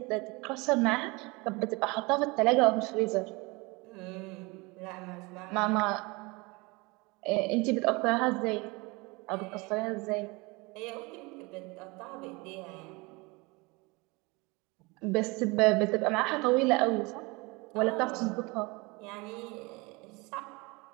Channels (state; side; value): quieter; left; 25.8 dB